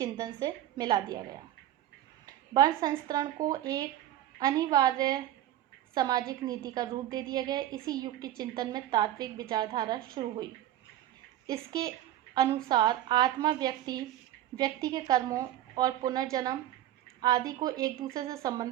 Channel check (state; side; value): quieter; left; 12.8 dB